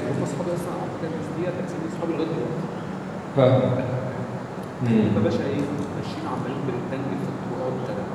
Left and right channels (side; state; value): both; identical; correlation 1.00